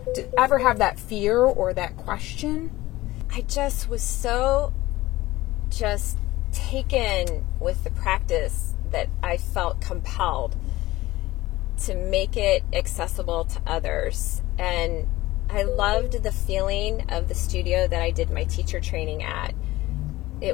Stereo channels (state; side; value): quieter; right; 18.0 dB